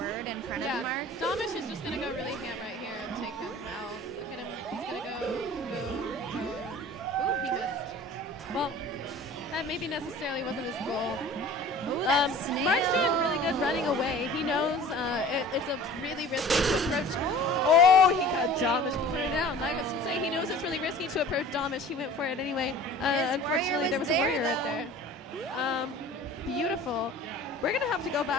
in front Yeah, of Mark. Domish is just gonna go really ham right here and take him out. Look at him. He's gonna go. Ooh, he missed. Well, that maybe necessarily wasn't his goal. Ooh, that Mark's snail. doing really good running away. He knows it's a really risky to approach. Oh, he got Domish put it down. Like I was gonna say, he knows it's really risky to approach Domish. He went for it anyway. Unfortunately, there was a warrior right there. Beautiful. We're gonna have to go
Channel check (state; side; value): normal; both; correlation 0.43